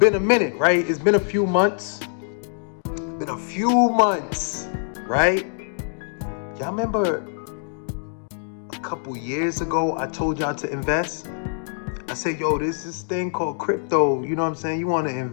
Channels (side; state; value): right; silent; digital silence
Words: a minute, right? It's been a few months. Right? Y'all remember a couple years ago, I told y'all to invest? I said, yo, there's this thing called crypto. You know what I'm saying? You want to